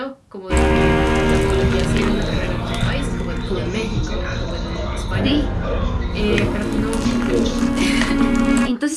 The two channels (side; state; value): both; identical; correlation 1.00